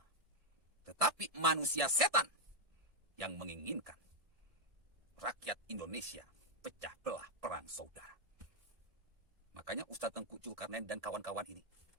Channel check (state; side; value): late; left; 1.7 ms